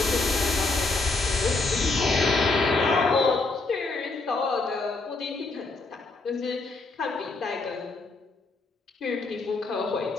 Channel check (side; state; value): right; quieter; 3.4 dB